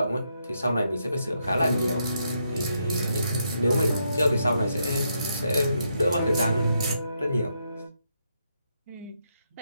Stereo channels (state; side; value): inverted; both; correlation -0.79